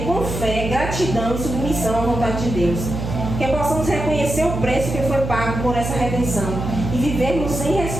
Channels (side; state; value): right; noise; hum, 5 dB below the sound